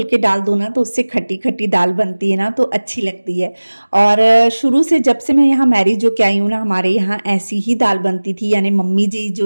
के डाल दो ना तो उससे खट्टी खट्टी दाल बनती है ना, तो अच्छी लगती है। और शुरू से जब से मैं यहाँ मैरिज होके आई हूँ ना, हमारे यहाँ ऐसी ही दाल बनती थी, यानी मम्मी जी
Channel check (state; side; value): inverted; both; correlation -1.00